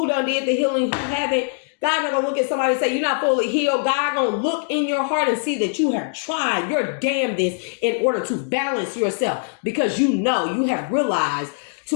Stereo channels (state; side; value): silent; right; digital silence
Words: done did the healing, who haven't, God not going to look at somebody and say, you're not fully healed. God going to look in your heart and see that you have tried your damnedest in order to balance yourself, because you know, you have realized